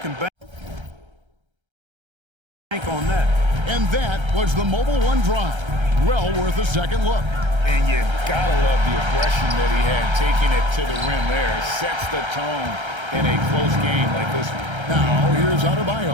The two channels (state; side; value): late; left; 1.3 ms